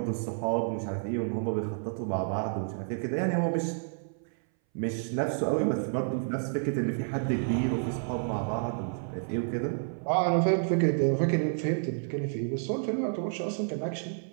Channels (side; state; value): left; silent; 58 dB below the other